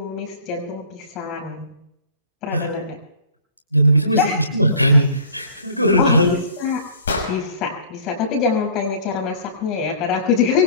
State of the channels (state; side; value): inverted; both; correlation -0.46